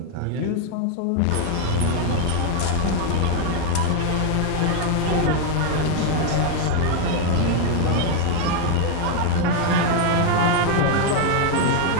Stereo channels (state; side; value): different; both; correlation 0.00